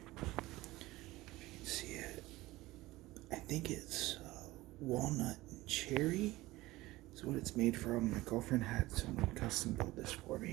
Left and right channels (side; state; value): left; quieter; 18.7 dB